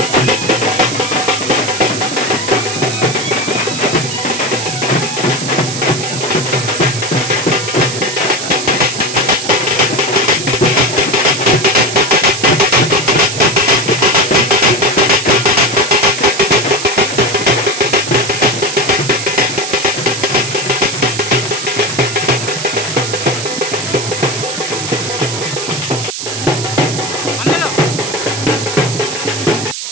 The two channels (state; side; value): noise; right; hiss, 6 dB below the sound